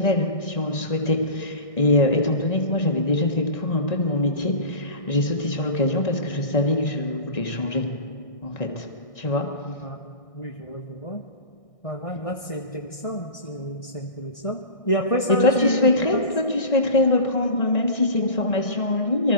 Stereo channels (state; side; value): late; right; 1.6 ms